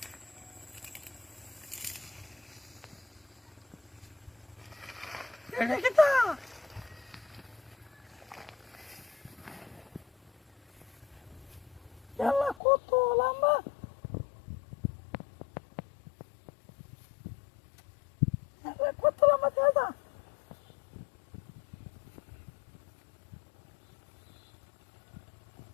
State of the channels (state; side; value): drops out; right; at 12.6 s